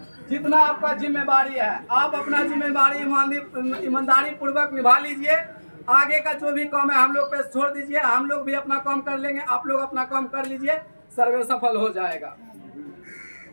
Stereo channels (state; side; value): inverted; both; correlation -1.00